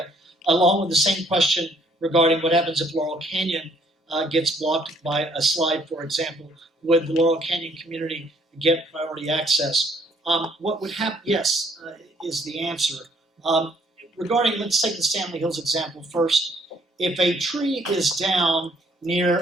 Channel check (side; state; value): both; normal; correlation 0.64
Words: along with the same question regarding what happens if Laurel Canyon gets blocked by a slide, for example. Would the Laurel Canyon community get priority access? What would happen, yes, is the answer. Regarding, let's take the Stanley Hills example first. If a tree is down